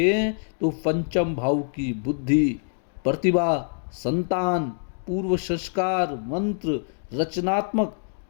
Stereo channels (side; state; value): right; silent; 62 dB below the other